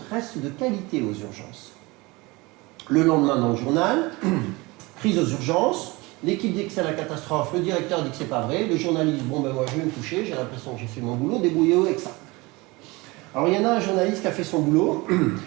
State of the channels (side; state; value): left; quieter; 23.6 dB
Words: reste de qualité aux urgences. Le lendemain dans le journal, prise aux urgences, l'équipe dit que c'est la catastrophe, le directeur dit que c'est pas vrai, le journaliste, bon ben moi je vais me coucher, j'ai l'impression que j'ai fait mon boulot, débrouillez-vous avec ça. Alors il y en a un journaliste qui a fait son boulot.